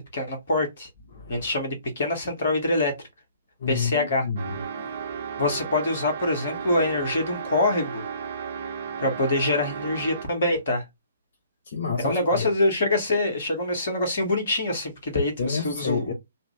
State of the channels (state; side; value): inverted; both; correlation -0.58